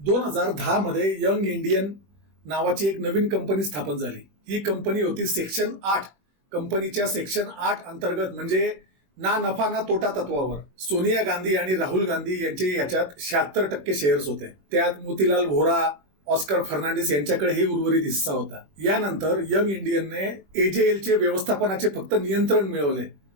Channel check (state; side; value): late; left; 21 ms